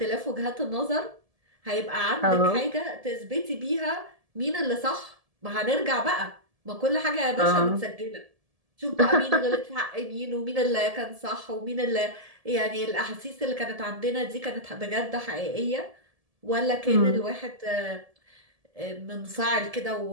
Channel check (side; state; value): left; late; 1.7 ms